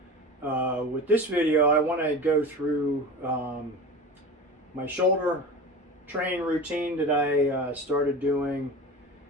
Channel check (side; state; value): both; normal; correlation 0.31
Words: with this video, I want to go through my shoulder training routine that I started doing